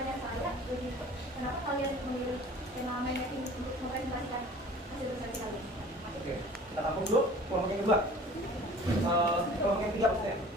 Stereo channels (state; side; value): normal; both; correlation 0.47